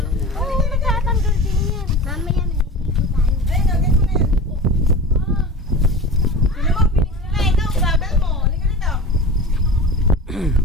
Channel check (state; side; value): normal; both; correlation 0.33